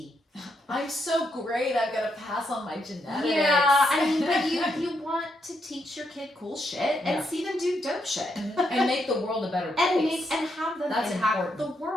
I'm so great. I've got to pass on my genetics. Yeah, I mean, but you want to teach your kid cool shit and see them do dope shit. And make the world a better place. And have them That's impact important. the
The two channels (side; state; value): both; normal; correlation 0.79